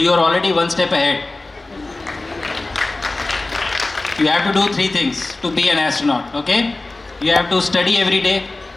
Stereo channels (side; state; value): right; quieter; 3.1 dB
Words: are already one step ahead. You have to do 3 things to be an astronaut, okay? You have to study every day,